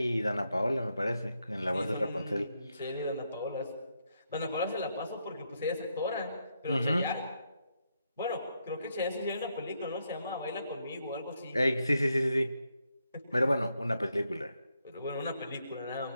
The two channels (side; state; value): both; inverted; correlation -0.80